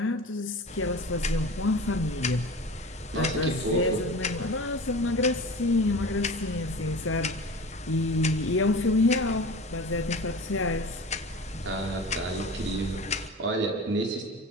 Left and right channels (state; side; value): normal; both; correlation 0.35